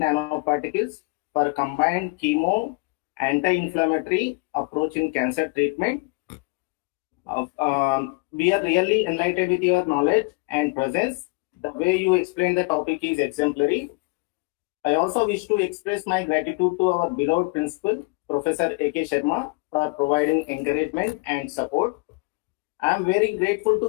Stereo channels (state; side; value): quieter; right; 28.5 dB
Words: for combined chemo anti-inflammatory approach in cancer treatment. We are really enlightened with your knowledge and presence. The way you explain the topic is exemplary. I also wish to express my gratitude to our beloved principal, Professor A.K. Sharma, for providing encouragement and support. I am very grateful